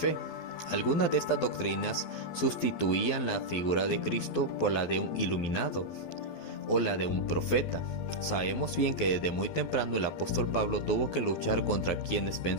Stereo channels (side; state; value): right; late; 12 ms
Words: Algunas de estas doctrinas sustituían la figura de Cristo por la de un iluminado o la de un profeta. Sabemos bien que desde muy temprano el apóstol Pablo tuvo que luchar contra quienes